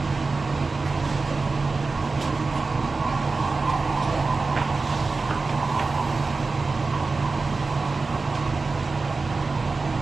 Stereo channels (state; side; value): quieter; left; 3.9 dB